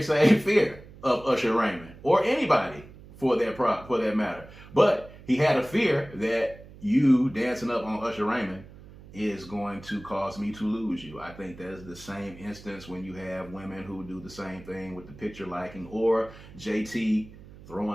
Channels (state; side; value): noise; right; hum, 19 dB below the sound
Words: same fear of Usher Raymond, or anybody for that matter. But he had a fear that you dancing up on Usher Raymond is going to cause me to lose you. I think that's the same instance when you have women who do the same thing with the picture liking, or JT